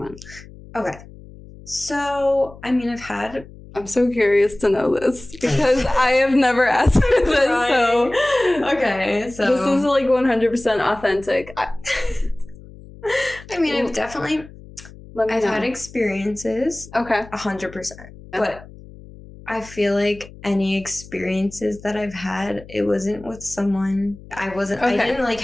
Okay. So, I mean, I've had... I'm so curious to know this because I have never asked for this. Right. So, okay, so this is like 100% authentic. I mean, I've had experiences. Okay. 100%. But I feel like any experiences that I've had, it wasn't with someone. I didn't like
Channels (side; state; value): left; noise; hum, 19 dB below the sound